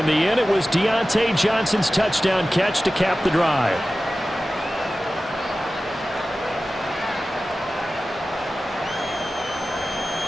the end, it was Deontay Johnson's touchdown catch to cap the drive.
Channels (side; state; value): both; normal; correlation 0.95